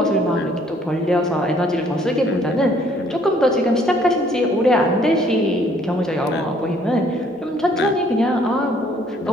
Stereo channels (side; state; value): both; normal; correlation 0.62